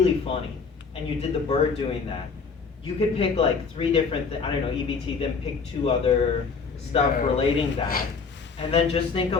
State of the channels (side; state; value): right; quieter; 5.1 dB